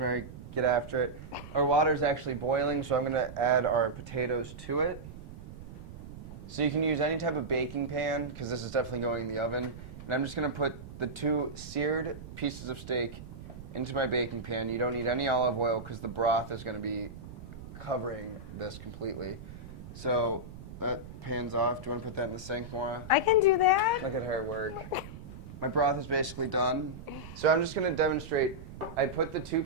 Get after it. Our water is actually boiling, so I'm going to add our potatoes to it. So you can use any type of baking pan, because this is definitely going in the oven. And I'm just going to put the 2 seared pieces of steak into my baking pan. You don't need any olive oil because the broth is going to be covering this completely. So that pan's off. Do you want to put that in the sink, Maura? I can do that. Look at her work. My broth is basically done. So I'm just going to demonstrate. I put the 2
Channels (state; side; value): noise; right; rumble, 13 dB below the sound